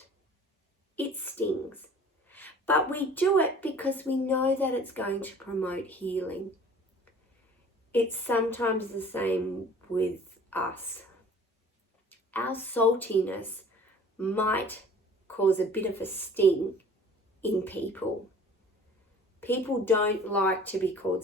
it stings. But we do it because we know that it's going to promote healing. It's sometimes the same with us. Our saltiness might cause a bit of a sting in people. People don't like to be called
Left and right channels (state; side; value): normal; both; correlation 0.48